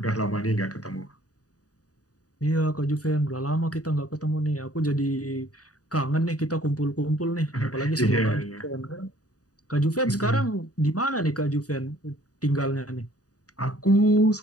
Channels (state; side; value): late; right; 0.67 ms